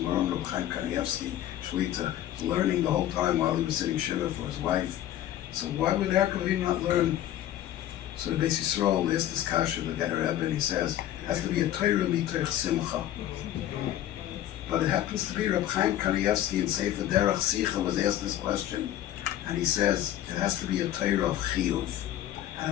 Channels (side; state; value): right; quieter; 12.4 dB